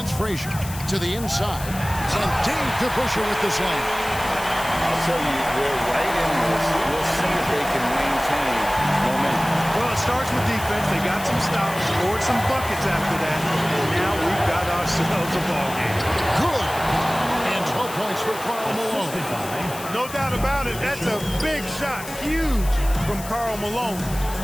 Frazier. To the inside. And Dave DeBusschere with the slam. I'll tell you, they're right in this. We'll see if they can maintain momentum. Well, it starts with defense. They got some stops, scored some buckets after that. And now we've got ourselves a ball game. Good. And 12 points for Karl Malone. No doubt about it. That's a big shot. Huge from Karl Malone.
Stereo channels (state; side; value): noise; left; hiss, 13 dB below the sound